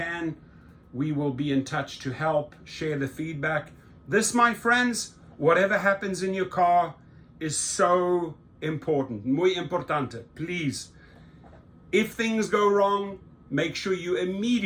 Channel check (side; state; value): both; identical; correlation 1.00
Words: We will be in touch to help, share the feedback. This, my friends, whatever happens in your car is so important, muy importante. Please, if things go wrong, make sure you